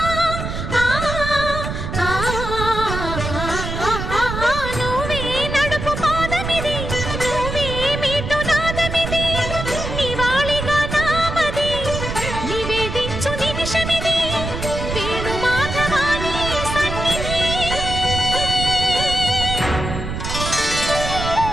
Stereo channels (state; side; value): noise; right; rumble, 5 dB below the sound